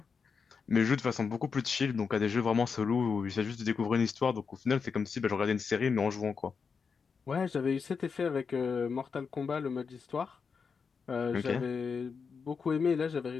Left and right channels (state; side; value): quieter; right; 5.6 dB